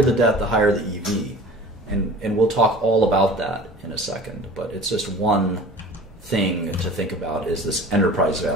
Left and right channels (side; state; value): both; normal; correlation 0.42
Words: the debt, the higher the EV. And we'll talk all about that in a second, but it's just one thing to think about is this enterprise